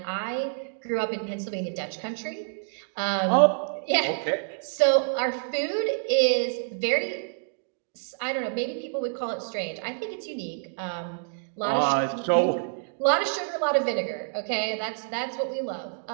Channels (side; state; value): left; silent; digital silence